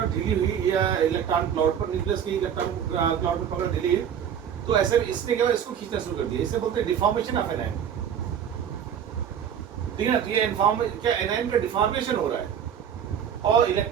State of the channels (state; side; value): quieter; left; 8.6 dB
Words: ढीली हुई या इलेक्ट्रॉन क्लाउड पर, न्यूक्लियस की इलेक्ट्रॉन क्लाउड पर पकड़ ढीली हुई, तो ऐसे इसने क्या इसको खींचना शुरू कर दिया। इसे बोलते हैं डिफॉर्मेशन ऑफ एनायन, ठीक है ना। तो ये क्या एनायन का डिफॉर्मेशन हो रहा है और